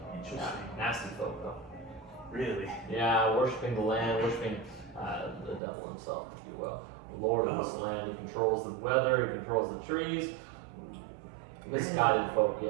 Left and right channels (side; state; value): left; drops out; at 5.6 s